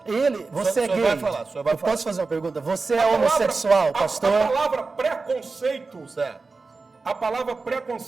você O senhor é gay. vai falar, o senhor vai Eu falar. posso fazer uma pergunta? Você A é palavra- homossexual, a pastor? palavra preconceito, Certo. a palavra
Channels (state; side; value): quieter; left; 4.0 dB